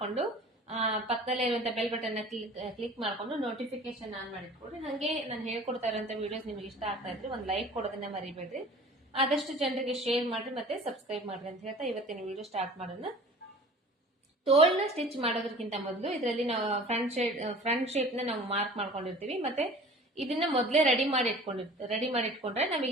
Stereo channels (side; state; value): both; normal; correlation 0.44